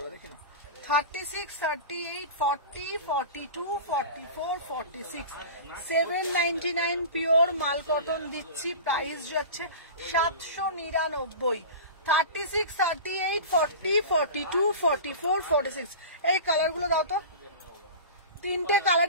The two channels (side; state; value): both; inverted; correlation -0.32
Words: देखे ना। 36, 38, 40, 42, 44, 46 799 পিওর মাল কটন দিচ্ছি। প্রাইস যাচ্ছে 799। 36, 38, 40, 42, 44, 46 এই কালারগুলো দাও তো। তিনটে